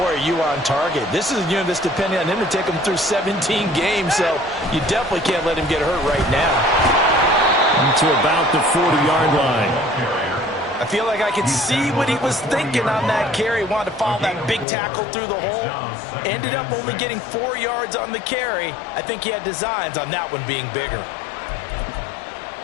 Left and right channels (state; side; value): drops out; right; at 14.7 s